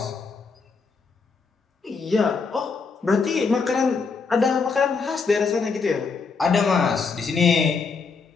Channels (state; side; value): quieter; right; 4.8 dB